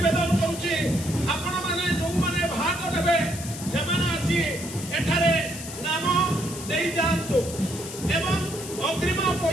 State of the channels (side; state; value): left; noise; hiss, 10 dB below the sound